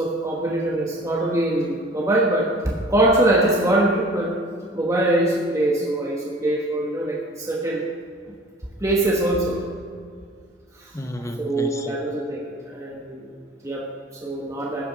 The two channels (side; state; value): both; normal; correlation 0.46